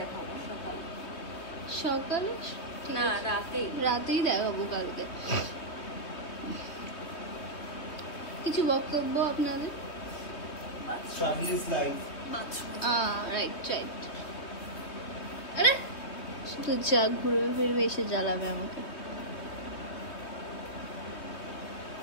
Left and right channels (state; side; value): late; right; 3.2 ms